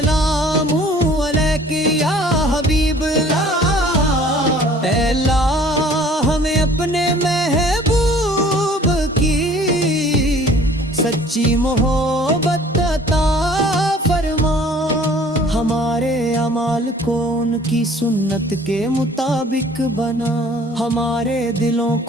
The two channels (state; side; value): normal; both; correlation 0.52